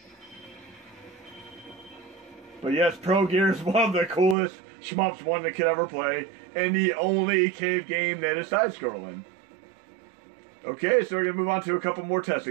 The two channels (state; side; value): drops out; left; at 4.4 s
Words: But yes, ProGear is one of the coolest shmups one that could ever play, and the only cave game that is side-scrolling. Okay, so we're going to move on to a couple more test